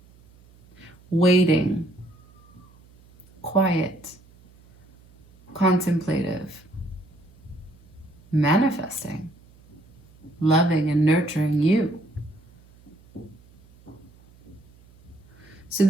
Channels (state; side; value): noise; right; hum, 27 dB below the sound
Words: waiting, quiet, contemplative, manifesting, loving and nurturing you. So